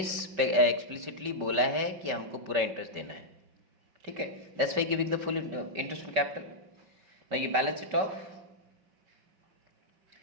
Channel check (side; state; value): left; late; 5.1 ms